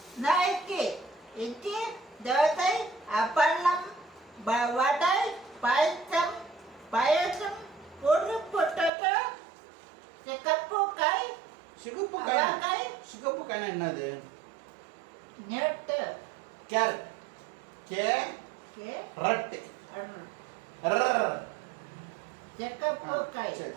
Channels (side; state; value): left; drops out; at 8.9 s